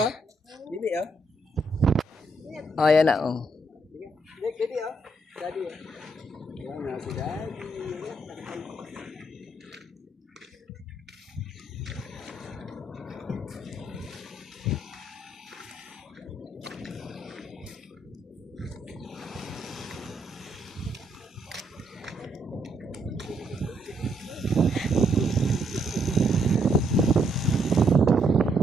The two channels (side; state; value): both; normal; correlation 0.74